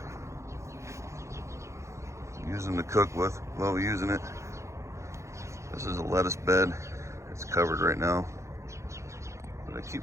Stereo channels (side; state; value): left; late; 0.14 ms